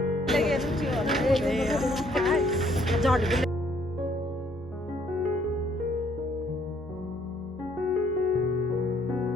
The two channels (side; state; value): both; normal; correlation 0.65